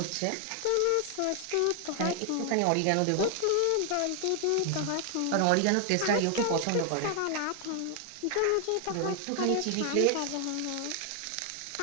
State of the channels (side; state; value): both; different; correlation 0.00